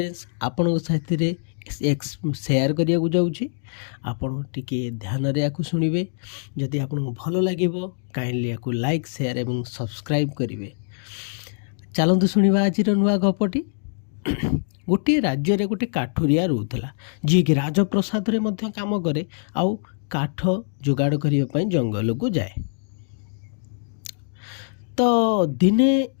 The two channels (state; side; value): silent; right; digital silence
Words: आपण साथी शेयर करिया जाऊँगी। आपण टिके ध्यान रे याकु सुनिबे। जदि आपन भल लागिबो काइंडली याकु लाइक शेयर एवं सब्सक्राइब करिवे। चलतु शुणा आज नुआ गपटी। गोटे राज्य रे गोटे काठुरिया रोला जी कि राजप्रसाद रे मध्य काम करे आउ काठ जोगाड़ करने जंगल को जाए। तो दिने